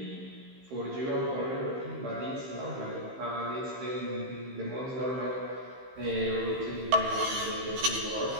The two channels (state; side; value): late; left; 15 ms